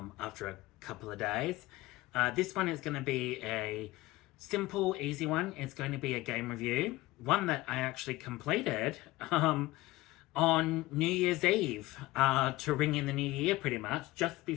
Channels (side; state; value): right; quieter; 18.9 dB